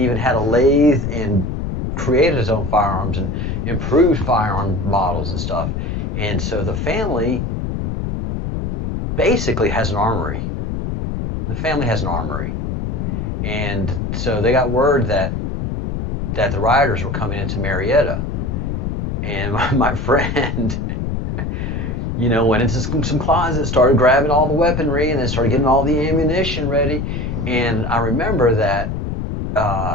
had a lathe and created his own firearms and improved firearm models and stuff. And so the family basically has an armory. The family has an armory. And so they got word that the rioters were coming into Marietta. And my friend, you know, went into some closets, started grabbing all the weaponry, and then started getting all the ammunition ready. And I remember that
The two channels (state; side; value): noise; left; rumble, 3 dB below the sound